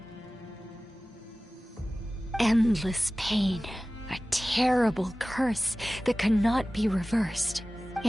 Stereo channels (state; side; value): normal; both; correlation 0.97